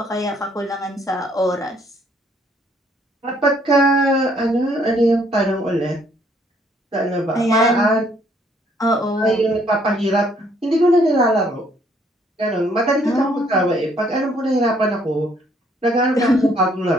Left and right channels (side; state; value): both; normal; correlation 0.66